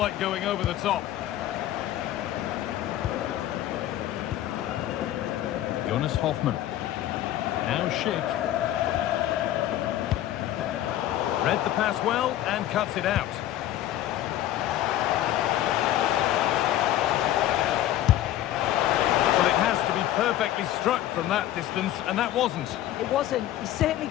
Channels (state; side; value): quieter; right; 13.1 dB